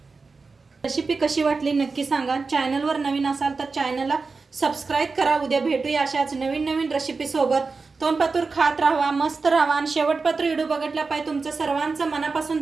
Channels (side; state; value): left; quieter; 4.3 dB